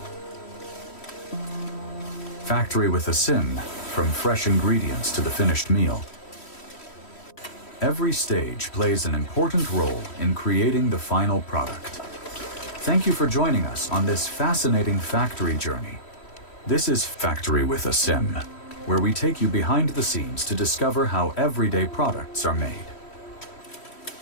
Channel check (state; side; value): late; right; 3.1 ms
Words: Factory with a sim, from fresh ingredients to the finished meal. Every stage plays an important role in creating the final product. Thank you for joining us on this fascinating factory journey. This is Factory with a Sim, where we take you behind the scenes to discover how everyday products are made.